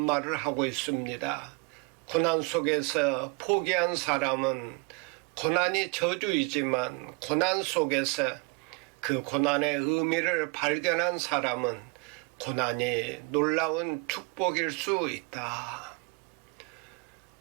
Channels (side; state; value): left; quieter; 31.0 dB